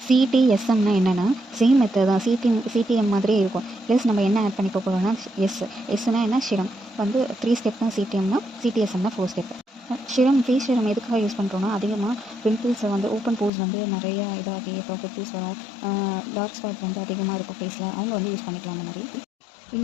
சிடிஎஸ்எம்னா என்னென்னா சேம் மெத்தட் தான், சிடிஎம் மாதிரியே இருக்கும். ப்ளஸ் நம்ம என்ன ஆட் பண்ணிக்க போகிறோம்னா எஸ்னா என்ன சிரம் வந்து 3 ஸ்டெப் தான். சிடிஎஸ்எம்னா 4 ஸ்டெப். ஃபேஸ் சிரம் எதுக்காக யூஸ் பண்ணுறோன்னா, அதிகமாக பிம்பிள்ஸை வந்து ஓப்பன் போர்ஸ் வந்து நிறையா இதாகி அப்புறம் பிம்பிள்ஸ் வரும், டார்க் ஸ்பாட் வந்து அதிகமாக இருக்கும் ஃபேஸில், அவங்க வந்து யூஸ் பண்ணிக்கலாம். அந்த மாதிரி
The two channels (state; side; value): drops out; right; at 13.5 s